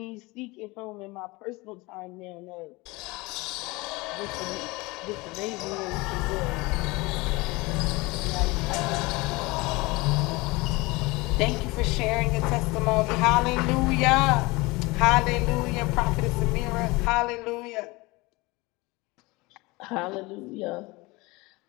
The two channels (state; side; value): quieter; right; 23.5 dB